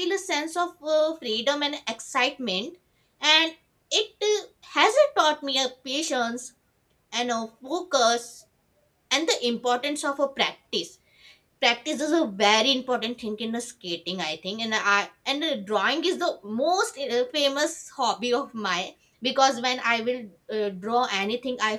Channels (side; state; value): both; identical; correlation 1.00